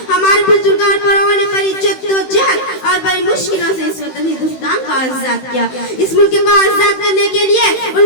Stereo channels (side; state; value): right; late; 16 ms